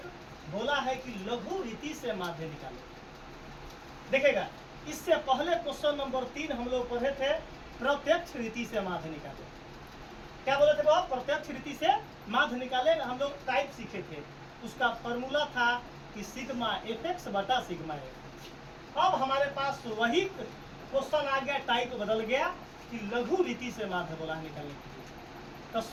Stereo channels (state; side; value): identical; both; correlation 1.00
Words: बोला है कि लघु रीति से माध्य निकालो। देखिएगा, इससे पहले क्वेश्चन नंबर 3 हम लोग पढ़े थे प्रत्यक्ष रीति से माध्य निकालो। क्या बोले थे वो? प्रत्यक्ष रीति से माध्य निकाले। हम लोग टाइप सीखे थे, उसका फॉर्मूला था कि सिग्मा एफ बटा सिग्मा एफ। अब हमारे पास वही क्वेश्चन आ गया, टाइप बदल गया कि लघु रीति से माध्य बोला है निकालने के लिए। तो